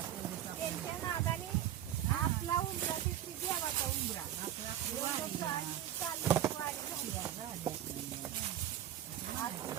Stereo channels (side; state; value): left; quieter; 11.6 dB